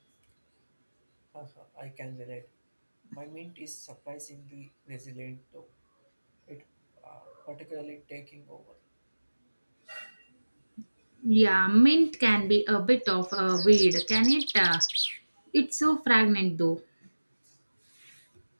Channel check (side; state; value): both; inverted; correlation -1.00